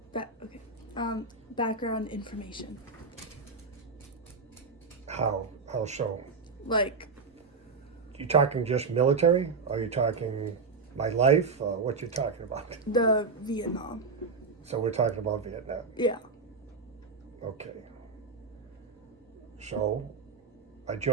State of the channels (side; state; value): left; quieter; 4.5 dB